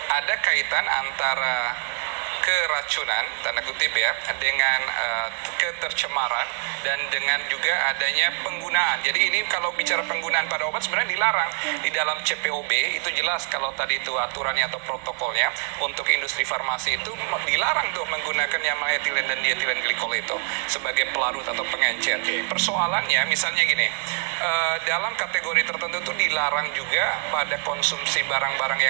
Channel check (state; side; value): quieter; left; 38.5 dB